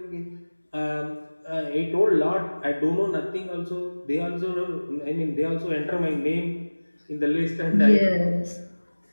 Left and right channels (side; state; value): both; inverted; correlation -1.00